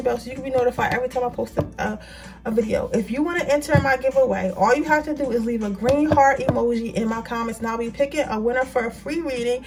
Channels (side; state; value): both; identical; correlation 1.00